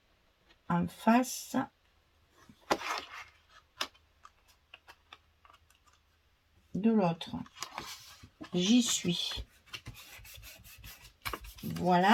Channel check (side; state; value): both; identical; correlation 1.00